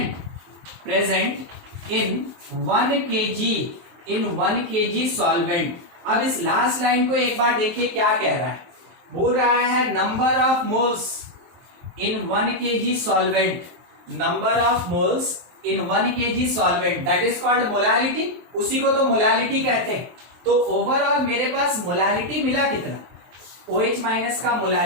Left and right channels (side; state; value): left; late; 23 ms